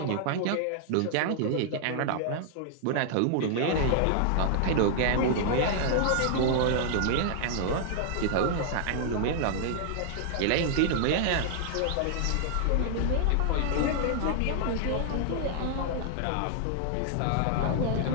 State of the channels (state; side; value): different; both; correlation -0.01